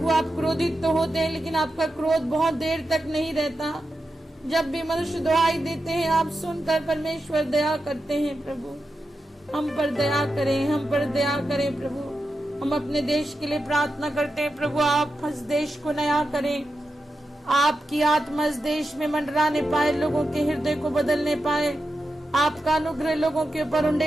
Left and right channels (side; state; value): both; normal; correlation 0.89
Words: आप क्रोधित तो होते हैं, लेकिन आपका क्रोध बहुत देर तक नहीं रहता। जब भी मनुष्य दुहाई देते हैं, आप सुनकर परमेश्वर दया करते हैं प्रभु। हम पर दया करें, हम पर दया करें प्रभु। हम अपने देश के लिए प्रार्थना करते हैं प्रभु, आप इस देश को नया करें, आपकी आत्मा इस देश में मंडराने पाए, लोगों के हृदय को बदलने पाए, आपका अनुग्रह लोगों के ऊपर